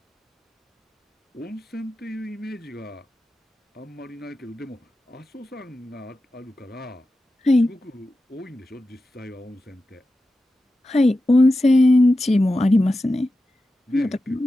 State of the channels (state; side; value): normal; both; correlation 0.92